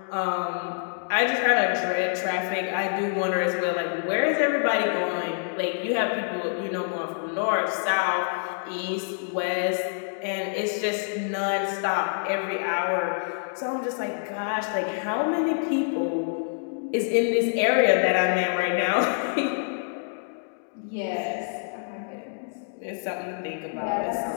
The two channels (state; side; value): silent; right; digital silence